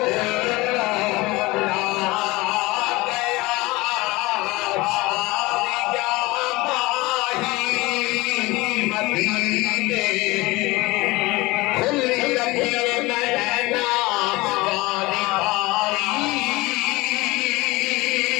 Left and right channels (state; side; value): quieter; right; 21.6 dB